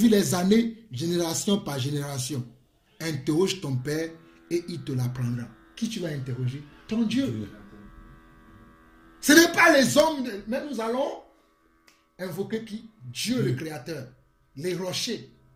les années, génération par génération. Interroge ton père et il te l'apprendra. Qui tu vas interroger? Ton Dieu. Ce n'est pas les hommes, mais nous allons invoquer qui? Dieu le Créateur, les rochers,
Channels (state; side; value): identical; both; correlation 1.00